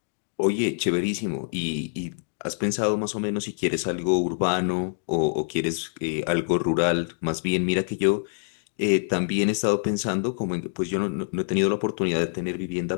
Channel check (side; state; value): right; silent; digital silence